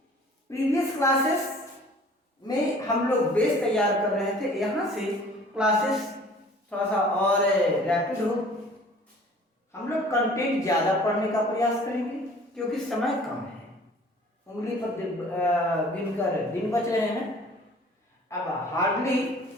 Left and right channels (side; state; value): both; normal; correlation 0.50